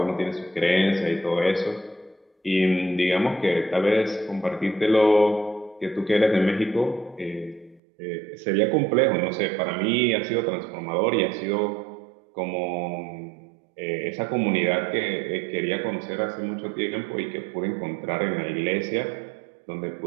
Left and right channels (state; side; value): drops out; left; at 7.8 s